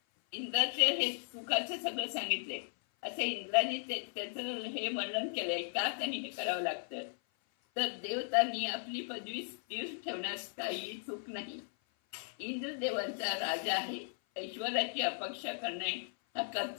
इंद्राचे हे सुखाचे सगळं सांगितले. असे इंद्राने त्याचं हे वर्णन केलंय. का त्यांनी हे करावं लागतं तर देवतांनी आपली पदवी स्थिर ठेवण्यास काही चूक नाही. इंद्रदेवांचा राजा आहे. ऐश्वर्याची अपेक्षा करणे हा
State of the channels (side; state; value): right; silent; 53 dB below the other